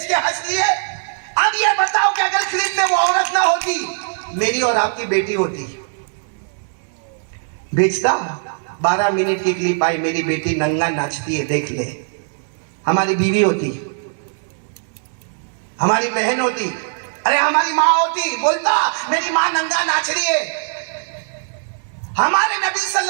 کے ہنس لیے. اب یہ بتاؤ کہ اگر کلپ میں وہ عورت نہ ہوتی, میری اور آپ کی بیٹی ہوتی, بھیجتا 12 منٹ کی کلپ آئی, میری بیٹی ننگا ناچتی ہے دیکھ لے. ہماری بیوی ہوتی, ہماری بہن ہوتی, ارے ہماری ماں ہوتی, بولتا میری ماں ننگا ناچ رہی ہے. ہمارے نبی صلی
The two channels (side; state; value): left; silent; digital silence